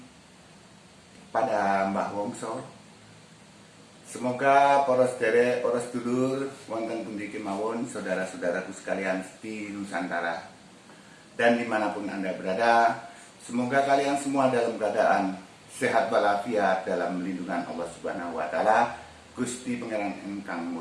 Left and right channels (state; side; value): identical; both; correlation 1.00